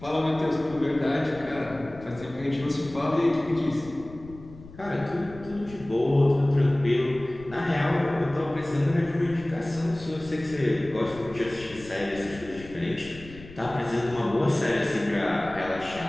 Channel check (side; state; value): left; noise; rumble, 18 dB below the sound